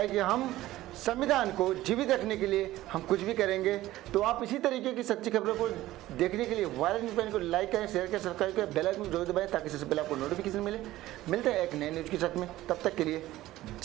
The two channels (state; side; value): quieter; left; 15.9 dB